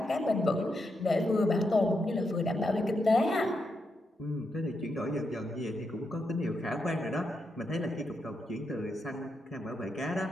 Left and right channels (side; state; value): both; normal; correlation 0.83